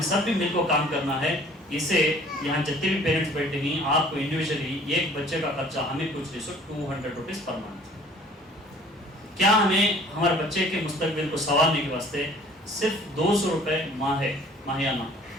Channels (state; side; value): normal; both; correlation 0.52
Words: सब भी मिलकर काम करना है। इसे यहाँ जितने भी पेरेंट्स बैठे हैं, आपको इंडिविजुअली एक बच्चे का खर्चा हमें कुछ नहीं, 200 रुपीज़ पर मंथ। क्या हमें हमारे बच्चे के मुस्तकबिल को संवारने के वास्ते सिर्फ 200 रुपये माहियाना